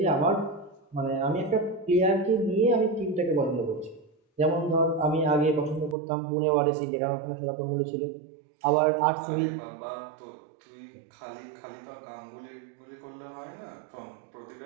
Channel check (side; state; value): left; drops out; at 6.0 s